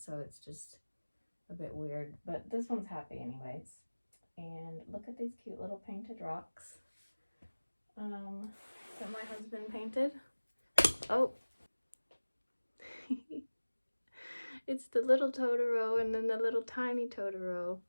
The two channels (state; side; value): inverted; both; correlation -1.00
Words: it's just a bit weird. But this one's happy anyways. And look at these cute little painted rocks that my husband painted. Oh, it's the little Totoro and then the little tiny Totoro.